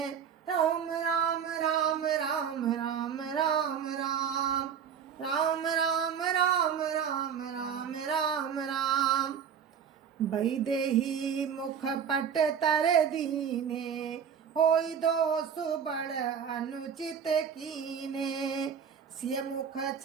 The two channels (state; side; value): quieter; left; 7.6 dB